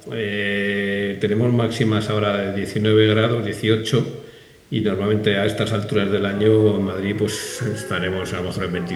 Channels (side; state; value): both; identical; correlation 1.00